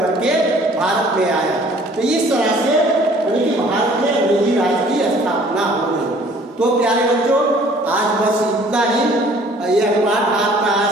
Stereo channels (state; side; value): normal; both; correlation 0.54